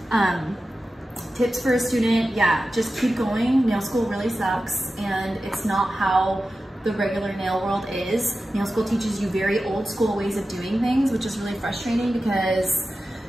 Tips for a student, yeah, just keep going. Nail school really sucks, and it's not how the regular nail world is. Nail school teaches you very old school ways of doing things, which is really frustrating, because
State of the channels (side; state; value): both; normal; correlation 0.93